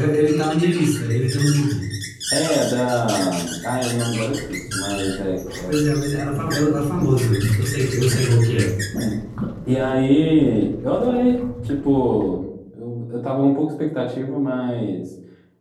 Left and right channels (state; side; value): identical; both; correlation 1.00